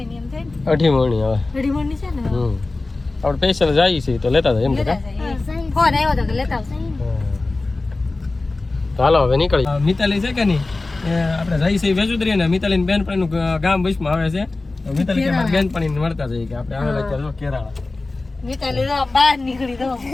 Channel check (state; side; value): quieter; right; 3.3 dB